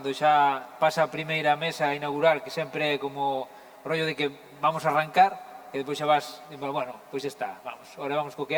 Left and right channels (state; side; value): identical; both; correlation 1.00